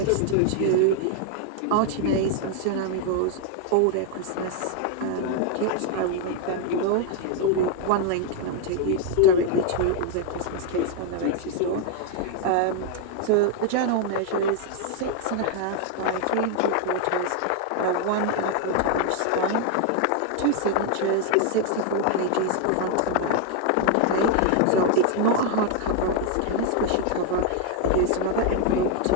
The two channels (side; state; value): both; different; correlation 0.00